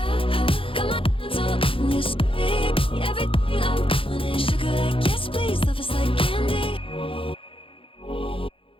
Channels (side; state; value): right; late; 0.26 ms